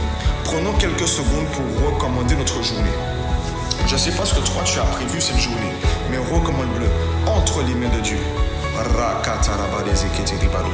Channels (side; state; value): both; identical; correlation 1.00